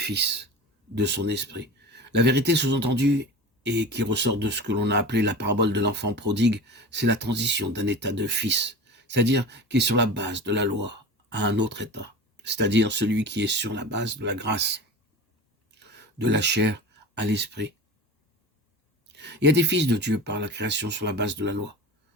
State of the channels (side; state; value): both; normal; correlation 0.33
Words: de son esprit. La vérité sous-entendue et qui ressort de ce que l'on a appelé la parabole de l'enfant prodigue, c'est la transition d'un état de fils, c'est-à-dire qui est sur la base de la loi, à un autre état, c'est-à-dire celui qui est sur la base de la grâce, de la chair à l'esprit. Il y a des fils de Dieu par la création sur la base de la loi.